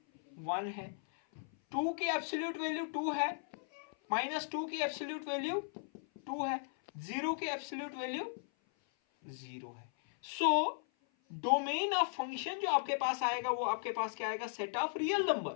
1 है. 2 की एब्सोल्यूट वैल्यू 2 है, -2 की एब्सोल्यूट वैल्यू 2 है, 0 की एब्सोल्यूट वैल्यू 0 है. सो डोमेन ऑफ फंक्शन जो आपके पास आएगा वो आपके पास क्या आएगा? Set of real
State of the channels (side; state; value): right; silent; 53 dB below the other